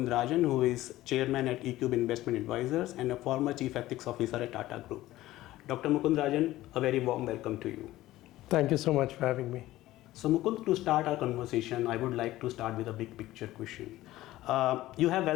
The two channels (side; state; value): right; quieter; 16.0 dB